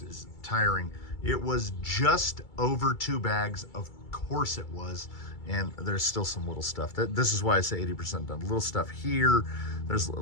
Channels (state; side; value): late; right; 2.3 ms